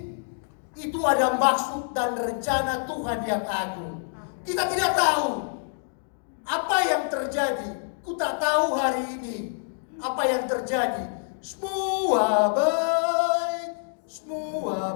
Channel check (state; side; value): silent; right; digital silence